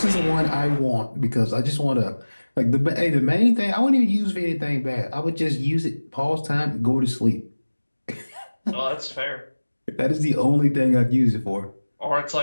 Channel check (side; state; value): both; inverted; correlation -1.00